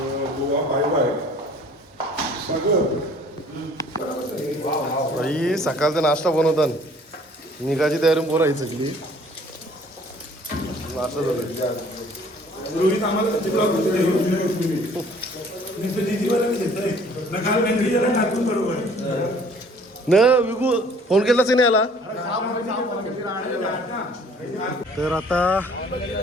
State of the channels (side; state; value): both; normal; correlation 0.55